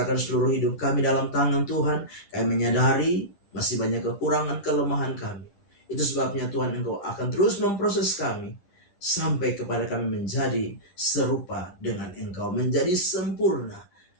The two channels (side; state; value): right; late; 10 ms